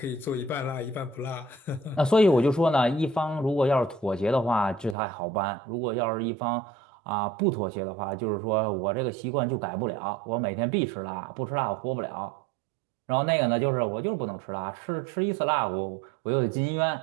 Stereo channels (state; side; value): drops out; left; at 5.0 s